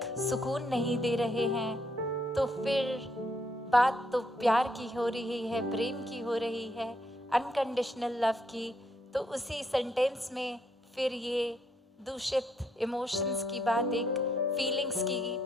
सुकून नहीं दे रहे हैं, तो फिर बात तो प्यार की हो रही है, प्रेम की हो रही है, अनकंडीशनल लव की। तो उसी सेंटेंस में फिर ये दूषित इमोशंस की बात, एक फीलिंग्स की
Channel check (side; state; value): both; normal; correlation 0.74